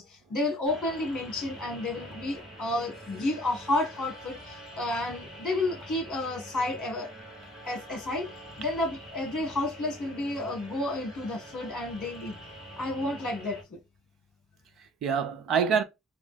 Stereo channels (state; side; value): normal; both; correlation 0.51